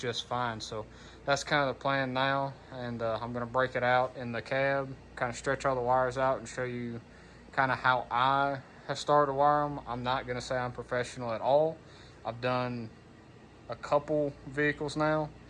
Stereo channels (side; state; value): both; identical; correlation 1.00